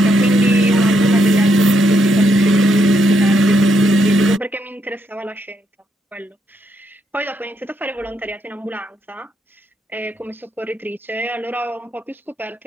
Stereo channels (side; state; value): both; normal; correlation 0.77